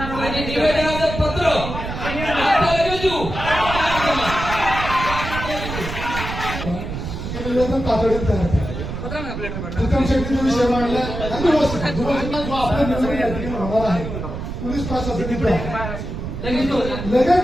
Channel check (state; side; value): noise; right; rumble, 6 dB below the sound